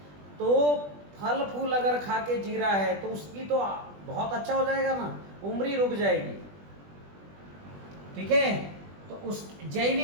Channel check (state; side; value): late; left; 20 ms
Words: तो फल फूल अगर खा के जी रहा है तो उसकी तो बहुत अच्छा हो जाएगा ना, उम्र ही रुक जाएगी। ठीक है। तो उस